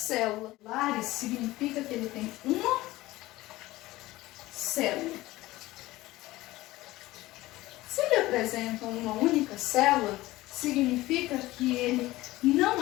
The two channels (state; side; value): quieter; right; 17.9 dB